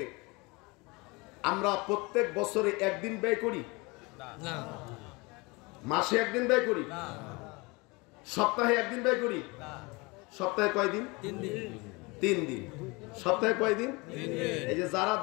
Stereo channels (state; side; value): quieter; right; 26.0 dB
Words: আমরা প্রত্যেক বছরে একদিন ব্যয় করি না, মাসে একদিন ব্যয় করি না, সপ্তাহে একদিন ব্যয় করি না। সপ্তাহে কয়দিন? 3 দিন। সপ্তাহে কয়দিন? 3 দিন। এই যে যারা